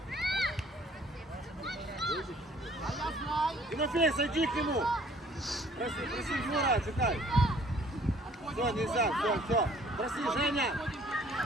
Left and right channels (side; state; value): both; normal; correlation 0.57